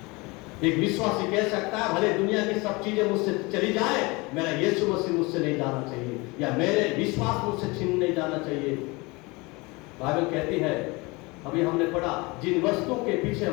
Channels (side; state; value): right; quieter; 25.2 dB